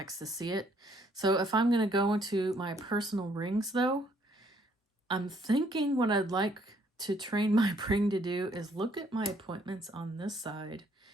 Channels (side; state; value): both; normal; correlation 0.66